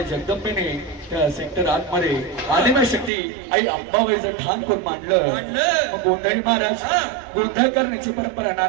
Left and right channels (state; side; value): drops out; left; at 3.1 s